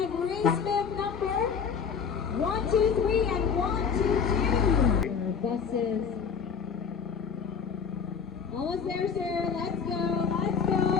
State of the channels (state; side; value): quieter; right; 6.3 dB